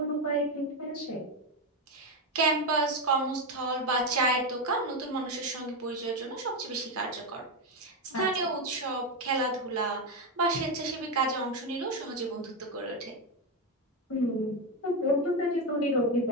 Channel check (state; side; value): normal; both; correlation 0.09